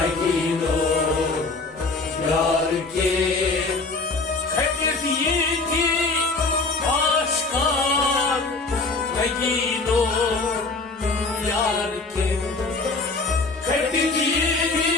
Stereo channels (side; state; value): right; quieter; 3.7 dB